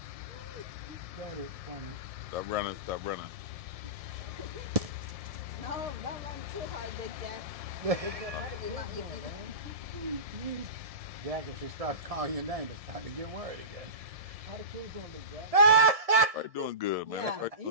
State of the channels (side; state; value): left; late; 1.7 ms